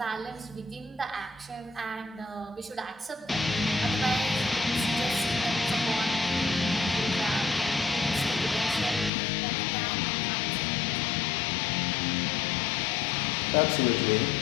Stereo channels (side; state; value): right; drops out; at 9.1 s